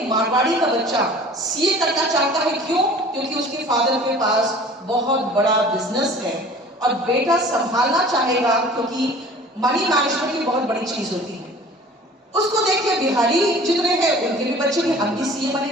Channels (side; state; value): both; normal; correlation 0.46